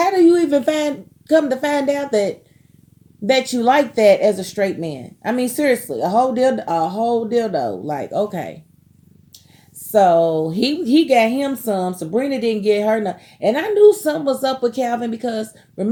do you even come to find out that you like that as a straight man? I mean, seriously, a whole dildo. Like, okay. So he got him some. Sabrina didn't get her none. And I knew something was up with Calvin because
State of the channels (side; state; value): both; identical; correlation 1.00